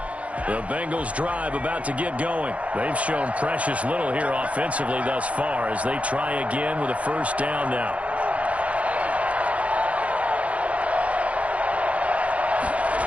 The Bengals drive about to get going. They've shown precious little here offensively thus far as they try again with a 1st down now.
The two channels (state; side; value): late; left; 0.064 ms